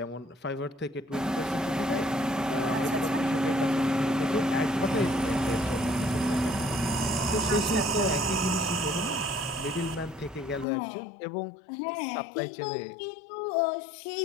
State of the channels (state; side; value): drops out; right; at 10.7 s